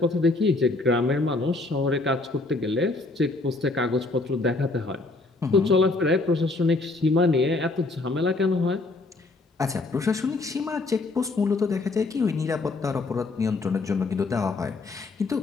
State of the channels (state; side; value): quieter; right; 3.3 dB